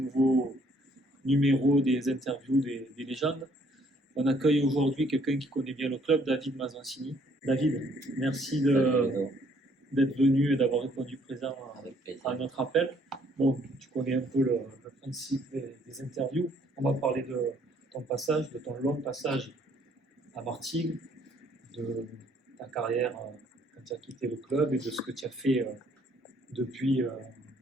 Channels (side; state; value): both; normal; correlation 0.64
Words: numéro des interviews des légendes. On accueille aujourd'hui quelqu'un qui connaît bien le club, David Mazancini. David, merci d'être venu et d'avoir répondu présent à notre appel. Bon, tu connais un peu le principe des interviews. On va parler de ton passage, de ton long passage à Martigues, de ta carrière quand tu as quitté le club et de ce que tu as fait depuis